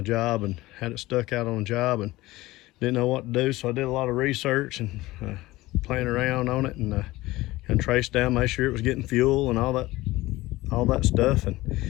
job, and had it stuck out on a job, and didn't know what to do. So I did a lot of research and playing around on it, and traced down, make sure it was getting fuel and all that stuff. And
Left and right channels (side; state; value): right; quieter; 18.6 dB